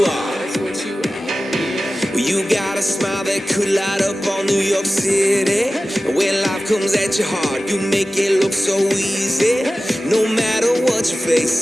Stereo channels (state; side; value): normal; both; correlation 0.95